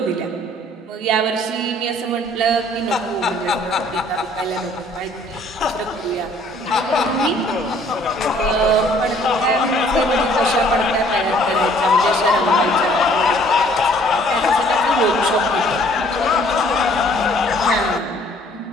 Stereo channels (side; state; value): both; normal; correlation 0.58